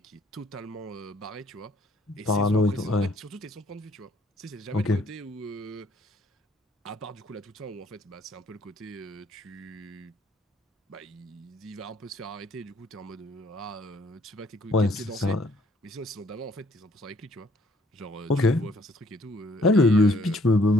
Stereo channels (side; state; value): both; normal; correlation 0.63